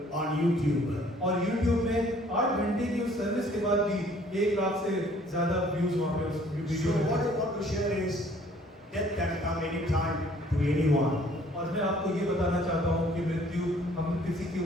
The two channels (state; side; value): normal; both; correlation 0.58